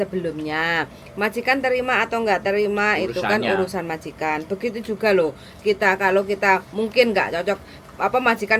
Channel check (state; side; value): identical; both; correlation 1.00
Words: Majikan terima atau enggak terima itu kan Urusannya. urusan majikan. Begitu juga loh. Kalau kita mungkin enggak cocok